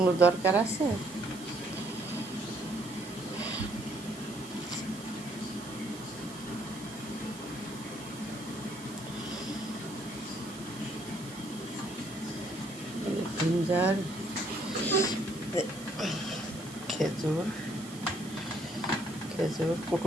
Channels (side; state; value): right; noise; hiss, 16 dB below the sound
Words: দরকার আছে? জিঞ্জার, খেজুর খেজুর